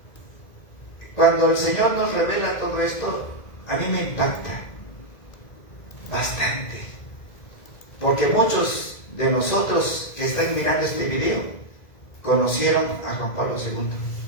Cuando el Señor nos revela todo esto, a mí me impacta bastante. Porque muchos de nosotros que están mirando este video conocieron a Juan Pablo II.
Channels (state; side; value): late; right; 2.1 ms